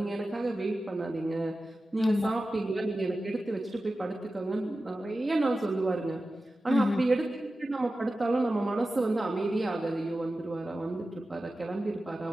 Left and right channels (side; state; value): both; normal; correlation 0.94